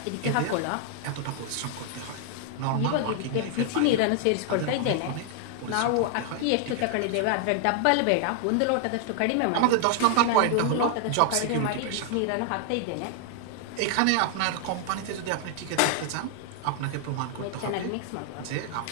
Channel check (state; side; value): different; both; correlation 0.00